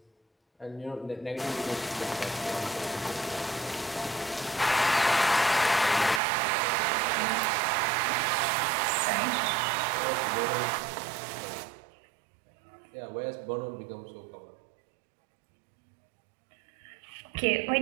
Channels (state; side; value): drops out; left; at 6.2 s